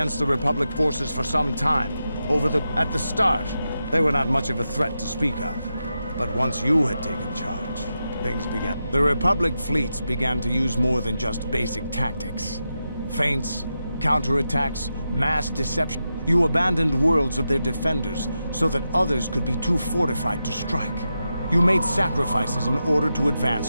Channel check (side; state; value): both; inverted; correlation -0.89